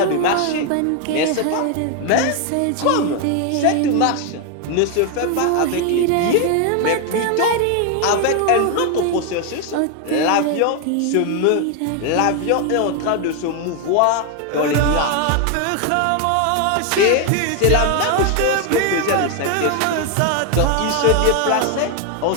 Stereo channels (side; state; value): both; different; correlation 0.01